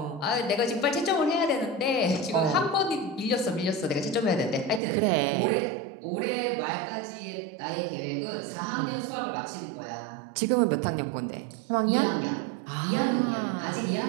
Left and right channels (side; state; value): left; drops out; at 4.8 s